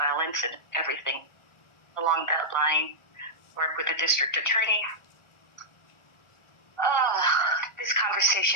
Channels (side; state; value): right; late; 1.4 ms